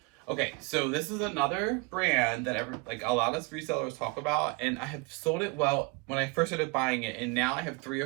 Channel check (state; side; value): quieter; left; 28.2 dB